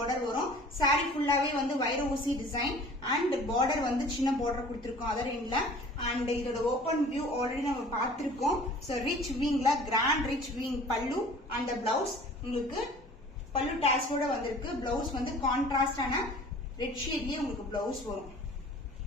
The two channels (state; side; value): normal; both; correlation 0.47